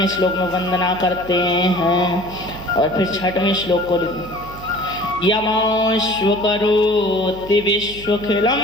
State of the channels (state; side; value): noise; right; hum, 16 dB below the sound